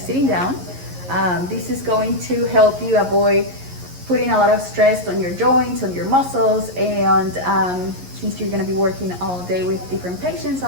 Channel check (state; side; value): late; left; 11 ms